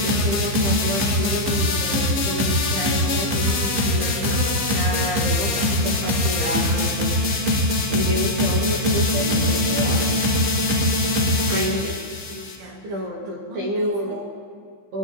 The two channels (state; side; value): late; left; 15 ms